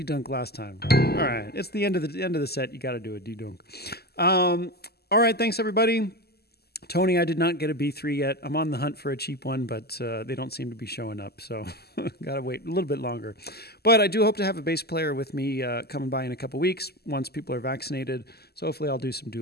last time. All right. It's the end of the set. You got to do a D-dunk. All right. Thanks, everybody. Tony, I did not get a B3 yet. I'm on the hunt for a cheap one, but they don't seem to be showing up, so got to wait a little bit longer. But I do hope to have a bass player with me coming by in a couple weeks once people are vaccinated. So hopefully I'll do some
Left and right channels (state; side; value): late; right; 0.46 ms